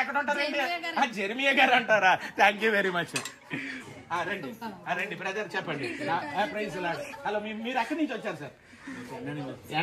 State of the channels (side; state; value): both; identical; correlation 1.00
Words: ఎక్కడ ఉంటారండి? జెర్మియా గారు అంటారా? Thank you very much. రండి రండి బ్రదర్, చెప్పండి. Praise lord. హలో, మీరు ఎక్కడి నుంచి వచ్చారు సార్?